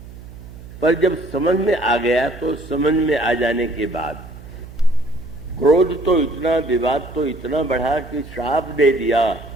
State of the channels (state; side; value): noise; right; hum, 16 dB below the sound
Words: पर जब समझ में आ गया तो समझ में आ जाने के बाद क्रोध तो इतना, विवाद तो इतना बढ़ा कि श्राप दे दिया।